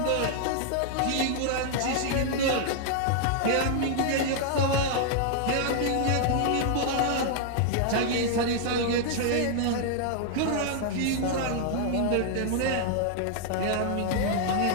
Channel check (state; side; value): different; both; correlation -0.01